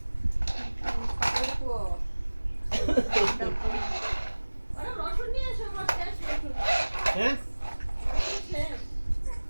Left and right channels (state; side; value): inverted; both; correlation -1.00